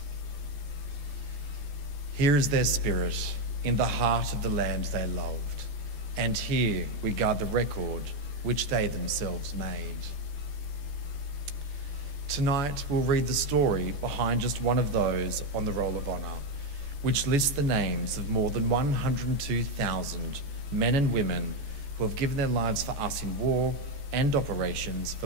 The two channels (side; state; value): left; late; 14 ms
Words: Here is their spirit in the heart of the land they loved. And here we guard the record which they themselves made. Tonight we'll read the story behind just one of those on the Roll of Honour, which lists the names of more than 102,000 men and women who have given their lives for us in war and operations